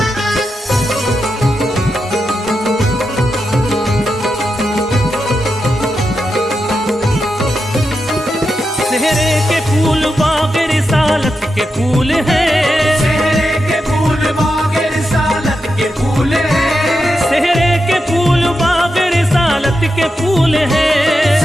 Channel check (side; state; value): both; normal; correlation 0.87